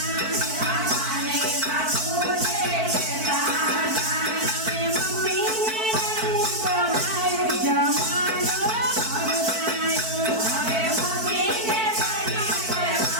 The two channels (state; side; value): late; left; 4.5 ms